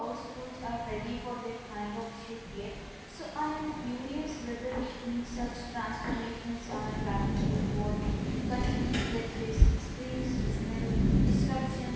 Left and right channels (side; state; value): both; identical; correlation 1.00